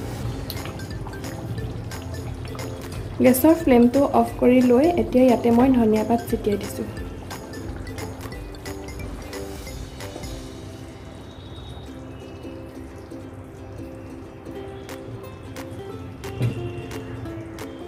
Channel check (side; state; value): both; identical; correlation 1.00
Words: গেছৰ ফ্লেমটো অফ কৰি লৈ এতিয়া ইয়াতে মই ধনিয়া পাত ছটিয়াই দিছোঁ।